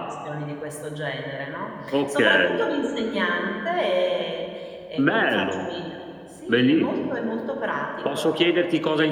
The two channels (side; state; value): both; identical; correlation 1.00